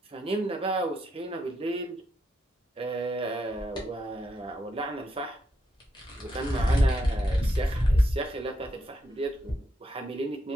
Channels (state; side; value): normal; both; correlation 0.81